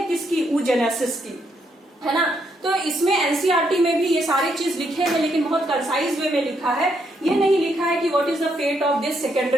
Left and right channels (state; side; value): normal; both; correlation 0.76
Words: किसकी, oogenesis की, है ना। तो इसमें एनसीईआरटी में भी ये सारी चीज लिखे हैं, लेकिन बहुत कंसाइज वे में लिखा है। ये नहीं लिखा है कि what is the fate of this